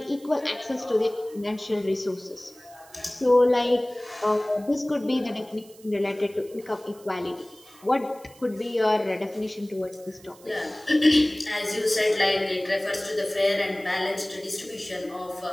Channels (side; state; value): right; noise; hiss, 24 dB below the sound